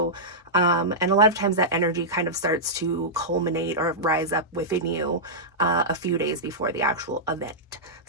and a lot of times that energy kind of starts to culminate or rise up within you a few days before the actual event.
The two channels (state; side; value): normal; both; correlation -0.12